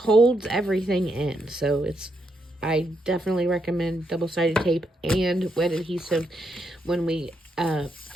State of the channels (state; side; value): normal; both; correlation 0.79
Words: everything in. So I definitely recommend double-sided tape and wet adhesive when we